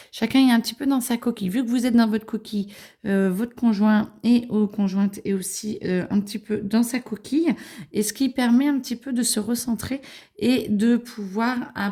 chacun est un petit peu dans sa coquille. Vu que vous êtes dans votre coquille, votre conjoint et ou conjointe est aussi un petit peu dans sa coquille. Et ce qui permet un petit peu de se recentrer et de pouvoir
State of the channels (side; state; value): both; identical; correlation 1.00